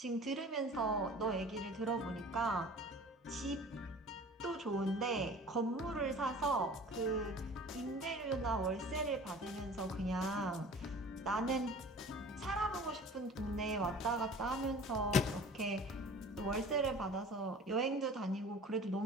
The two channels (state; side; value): normal; both; correlation 0.44